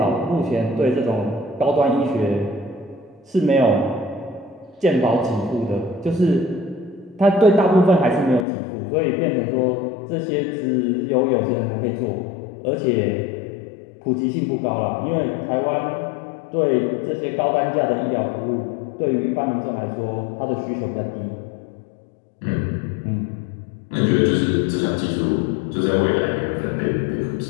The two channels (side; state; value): right; drops out; at 8.5 s